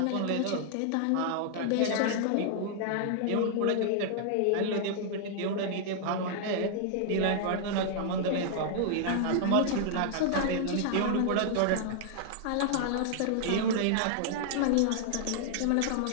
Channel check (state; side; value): different; both; correlation -0.01